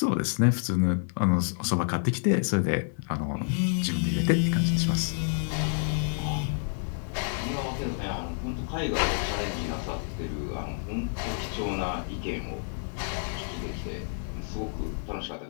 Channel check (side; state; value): right; silent; digital silence